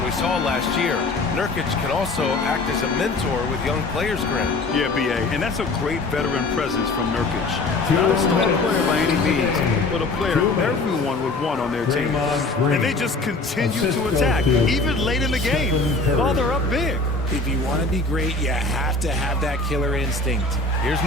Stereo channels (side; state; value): right; quieter; 3.3 dB